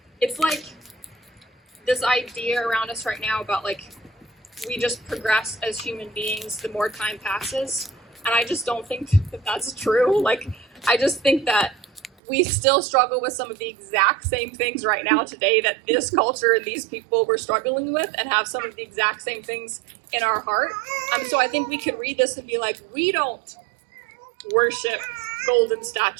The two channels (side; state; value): left; drops out; at 12.1 s